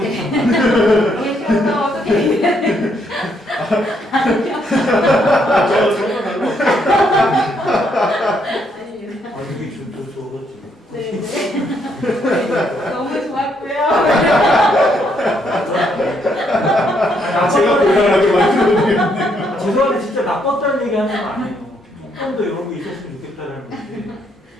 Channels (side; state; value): both; normal; correlation 0.73